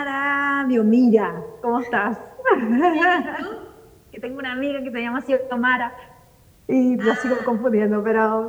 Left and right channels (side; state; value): both; identical; correlation 1.00